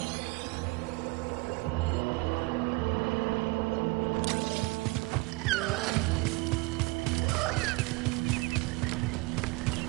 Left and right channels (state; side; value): quieter; left; 24.3 dB